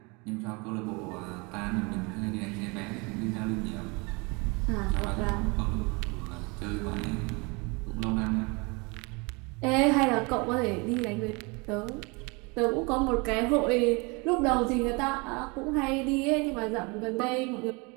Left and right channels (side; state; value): left; quieter; 28.8 dB